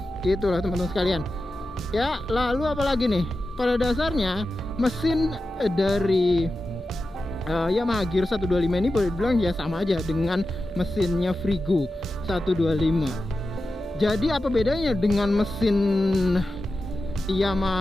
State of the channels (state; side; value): normal; both; correlation 0.92